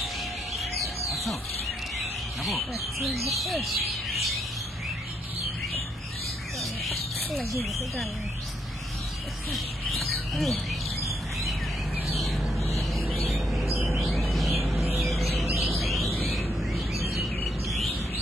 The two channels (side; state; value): both; normal; correlation 0.76